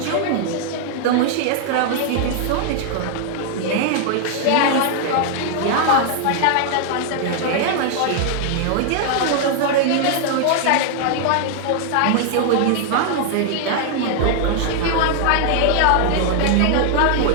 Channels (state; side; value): different; both; correlation 0.00